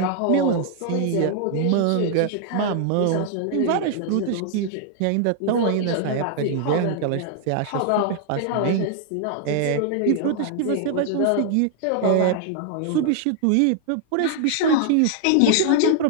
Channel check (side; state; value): both; different; correlation 0.00